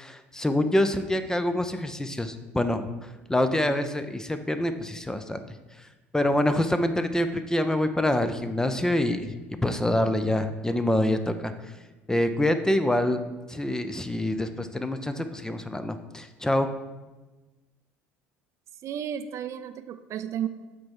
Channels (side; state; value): both; normal; correlation 0.85